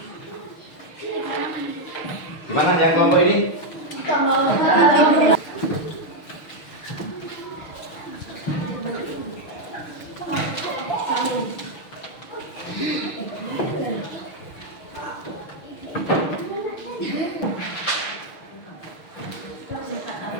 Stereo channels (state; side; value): late; right; 6.4 ms